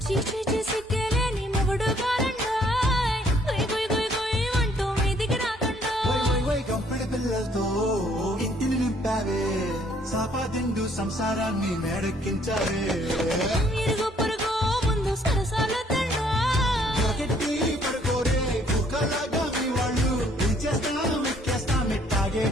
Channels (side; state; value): both; normal; correlation 0.64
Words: చీచీ చేసి కేలేని మొగుడు కారండాయ్ గుయ్ గుయ్ గుయ్ గుయ్ అంటూ మీదికి రాకండాయ్ గంపెడి పిల్లలతో ఇంటిని నింపావే సాపాదిండు సంసారాన్ని మేడెక్కించావే ఇరుగు పొరుగు ముందు సరసాల గట్టి పడుకోరే కుక్కలాగా మీ వాళ్ళు ఇచ్చేస్తాం ఎక్కేస్తాం ఎట్టాగే